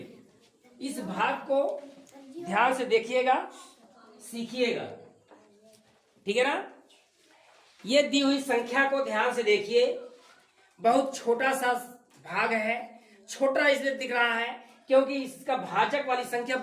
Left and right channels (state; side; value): identical; both; correlation 1.00